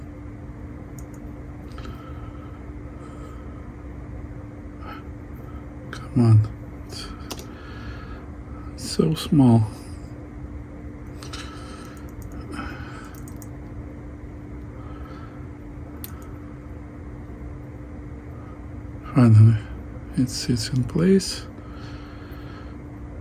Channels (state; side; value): identical; both; correlation 1.00